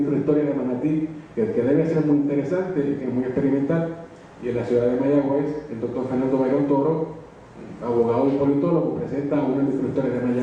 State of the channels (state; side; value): identical; both; correlation 1.00